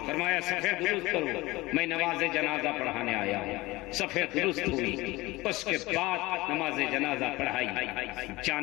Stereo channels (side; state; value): right; quieter; 20.7 dB